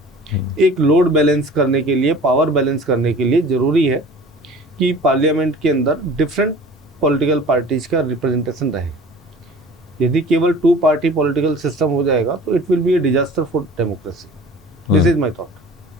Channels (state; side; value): normal; both; correlation 0.44